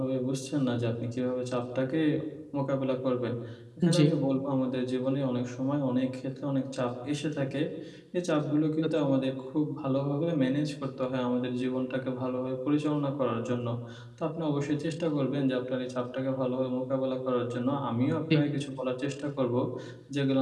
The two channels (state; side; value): identical; both; correlation 1.00